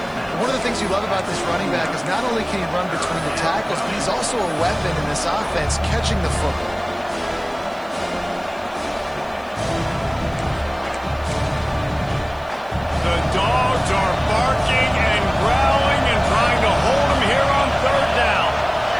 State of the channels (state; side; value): noise; right; hiss, 29 dB below the sound